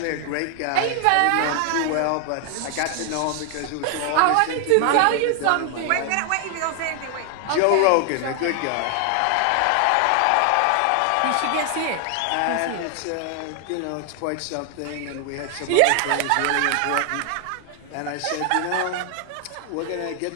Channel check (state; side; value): different; both; correlation 0.00